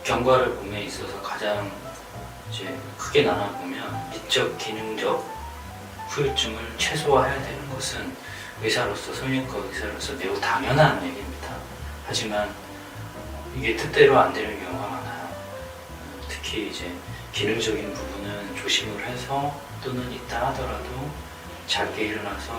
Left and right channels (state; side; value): identical; both; correlation 1.00